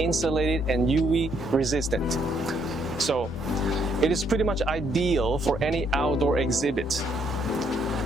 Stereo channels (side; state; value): both; normal; correlation 0.71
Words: and UV resistant. So it is pretty much ideal for any outdoor exhibit.